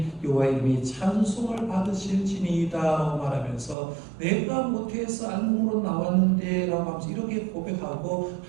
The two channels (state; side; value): drops out; left; at 3.8 s